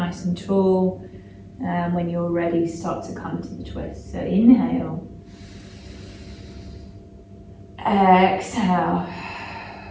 and tall. And when you're ready, start to come to the twist. So inhale. Exhale.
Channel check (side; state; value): both; identical; correlation 1.00